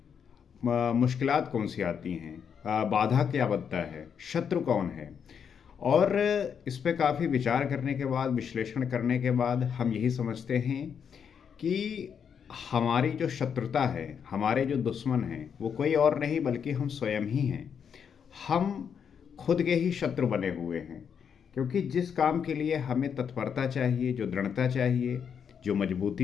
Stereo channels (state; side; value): quieter; right; 7.3 dB